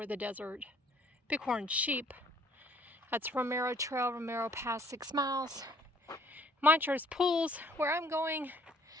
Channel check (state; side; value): normal; both; correlation 0.59